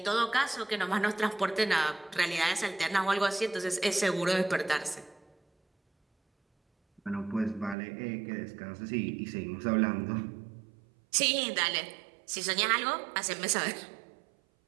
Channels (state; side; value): drops out; left; at 7.8 s